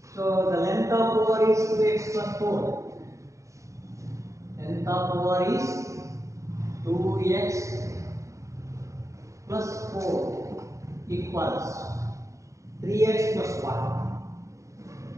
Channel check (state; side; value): late; left; 0.15 ms